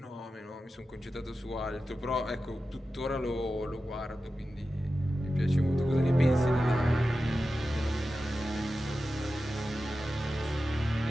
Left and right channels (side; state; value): both; normal; correlation 0.93